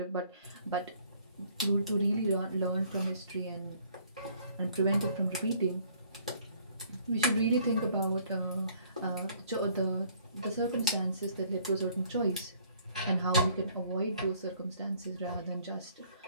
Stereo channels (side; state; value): both; inverted; correlation -0.60